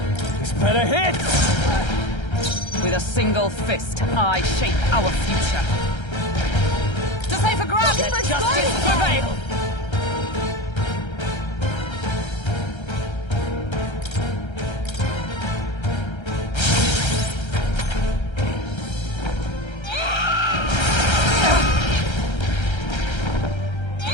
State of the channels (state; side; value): late; right; 1.3 ms